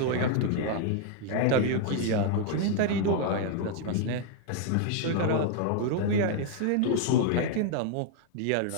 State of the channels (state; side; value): different; both; correlation 0.00